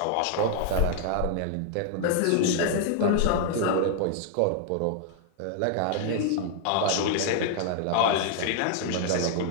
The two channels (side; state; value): both; different; correlation -0.01